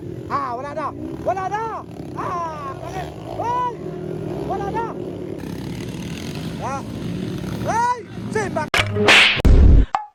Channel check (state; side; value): identical; both; correlation 1.00